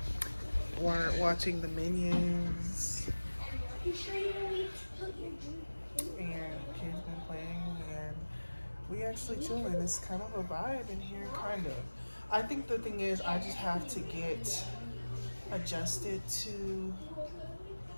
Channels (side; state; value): both; inverted; correlation -1.00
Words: watching the Minions, and kids been playing, and we actually chilling. It's kind of a vibe in here, kind of. I think the thing is, I just have to get adjusted to.